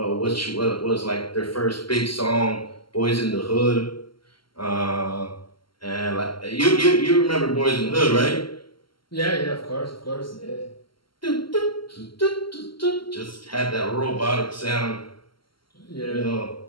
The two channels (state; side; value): late; right; 0.73 ms